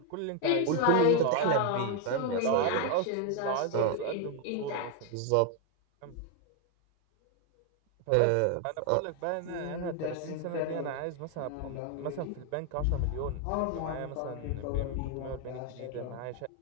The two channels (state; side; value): different; both; correlation 0.01